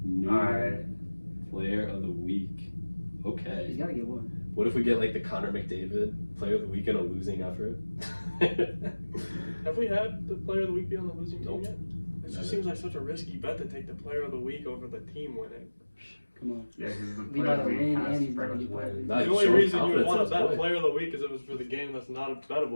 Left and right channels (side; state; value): both; inverted; correlation -1.00